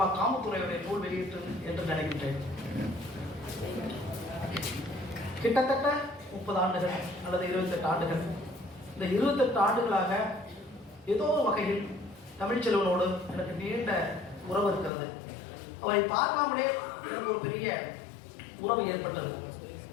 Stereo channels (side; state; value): right; drops out; at 14.9 s